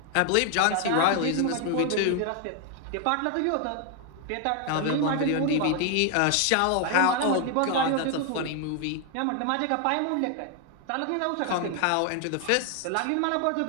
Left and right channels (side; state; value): both; different; correlation 0.00